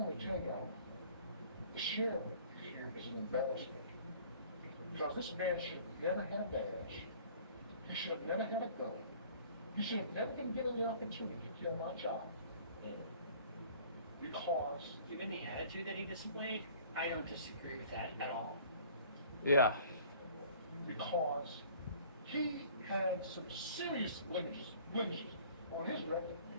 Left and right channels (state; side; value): inverted; both; correlation -0.50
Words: to tell y'all, the sheriff here is an embarrassment. Because this man should have never had a badge. He should have never had a gun. He should have never been given the opportunity to kill my child. Because Given the attitude that he displayed, I don't disagree with that at all. Yeah. because he had some serious blemishes on his record.